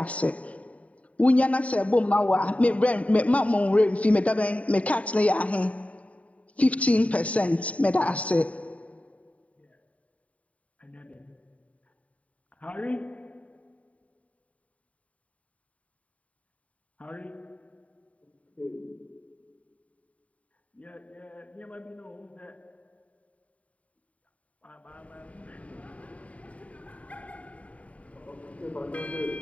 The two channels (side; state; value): right; late; 0.067 ms